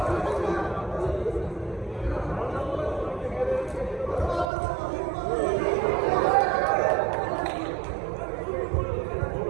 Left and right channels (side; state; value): left; drops out; at 4.5 s